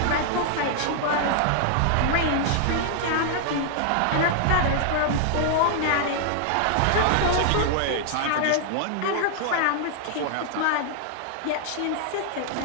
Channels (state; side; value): different; both; correlation 0.00